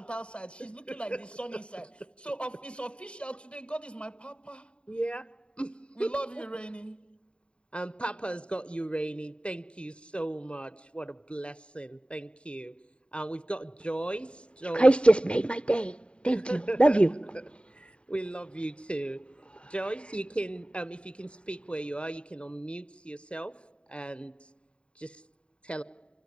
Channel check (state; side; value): late; right; 0.055 ms